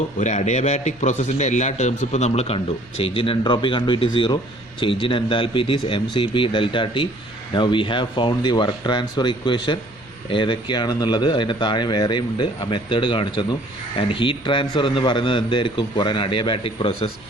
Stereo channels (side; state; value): left; noise; rumble, 27 dB below the sound